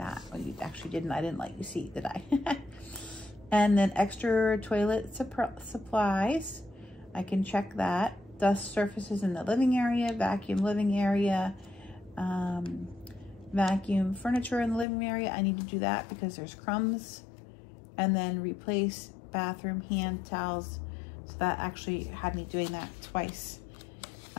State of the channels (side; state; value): right; drops out; at 14.9 s